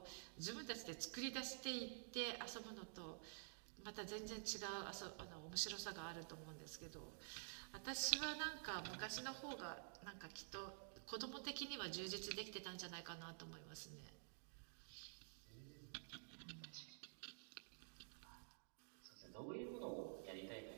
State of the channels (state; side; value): silent; left; digital silence